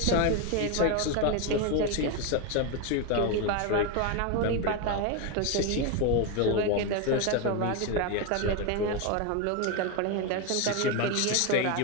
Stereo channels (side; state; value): both; different; correlation 0.02